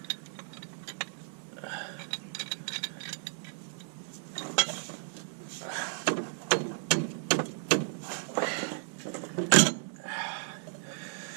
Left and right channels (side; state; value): left; silent; digital silence